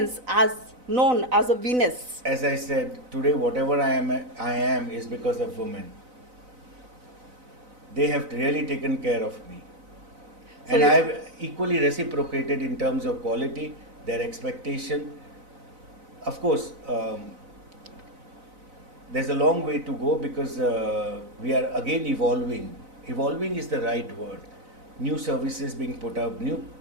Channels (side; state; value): left; late; 4.0 ms